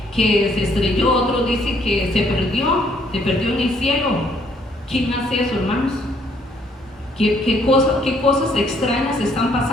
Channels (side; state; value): both; normal; correlation 0.66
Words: se estrelló, otros dicen que se perdió en el cielo. ¿Quién hace eso, hermanos? ¿Qué cosas extrañas están